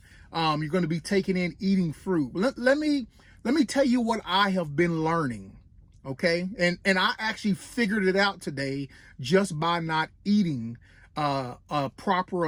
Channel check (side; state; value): both; identical; correlation 1.00